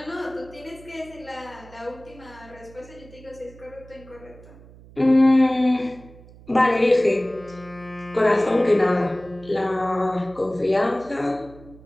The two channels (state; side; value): noise; right; hum, 21 dB below the sound